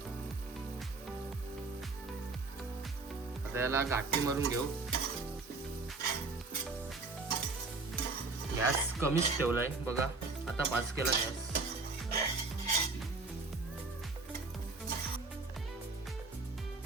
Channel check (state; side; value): quieter; left; 3.8 dB